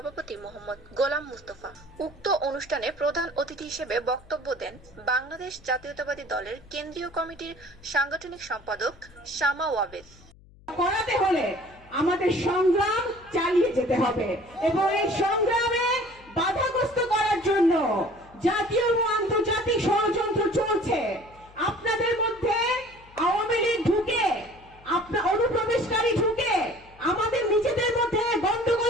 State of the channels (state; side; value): noise; left; hum, 25 dB below the sound